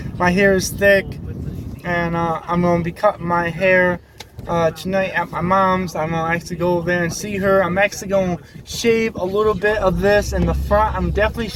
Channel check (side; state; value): both; identical; correlation 1.00